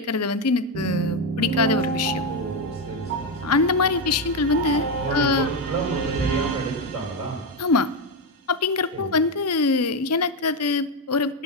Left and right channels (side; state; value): both; normal; correlation 0.08